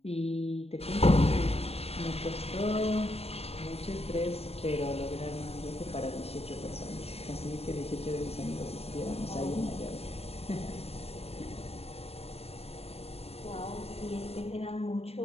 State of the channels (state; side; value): late; right; 0.29 ms